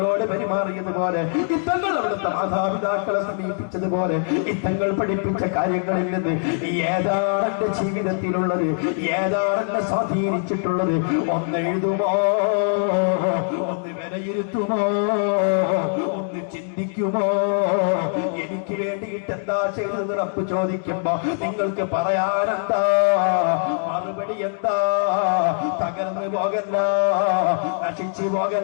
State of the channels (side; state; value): right; silent; 59 dB below the other